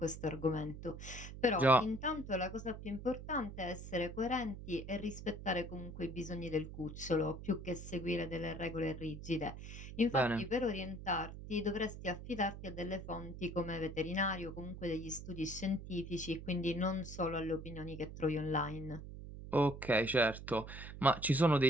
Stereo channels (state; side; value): noise; right; hum, 11 dB below the sound